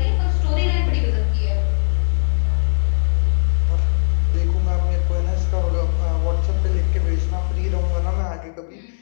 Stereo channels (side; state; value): right; silent; 66 dB below the other